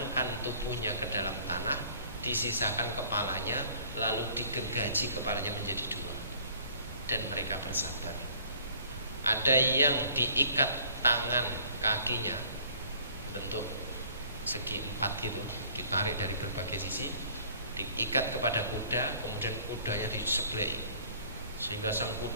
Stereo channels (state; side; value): inverted; both; correlation -0.53